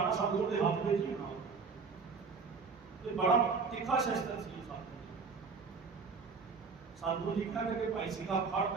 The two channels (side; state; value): left; quieter; 5.0 dB